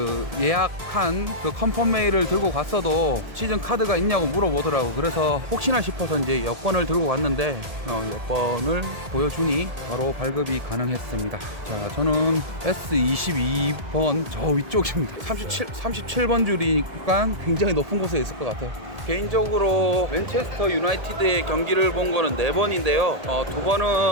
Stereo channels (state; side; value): late; left; 1.7 ms